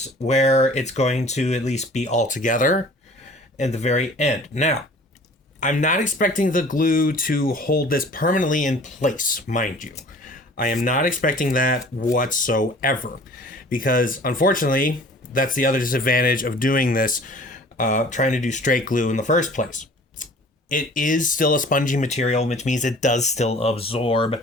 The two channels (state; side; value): normal; both; correlation 0.48